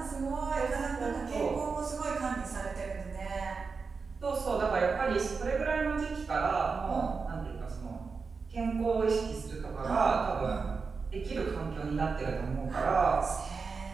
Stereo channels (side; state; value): left; quieter; 4.9 dB